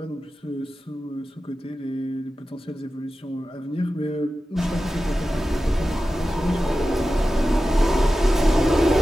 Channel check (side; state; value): both; normal; correlation 0.94